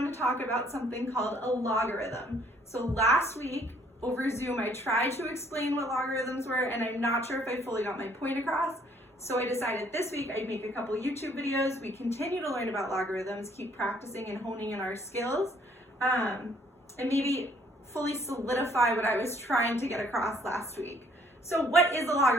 to talk about something called a logarithm. So last week over Zoom, I tried to explain what logarithms were, and I'm not sure if I fully got my point across. So I decided this week I'd make a couple YouTube videos. We continue to learn about logarithms, keep practicing and honing in our skills, and maybe fully solidify what I was trying to get across last week. So what is a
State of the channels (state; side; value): normal; both; correlation 0.63